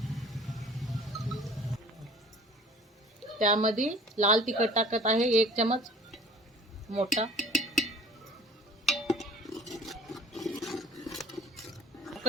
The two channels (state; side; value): normal; both; correlation 0.48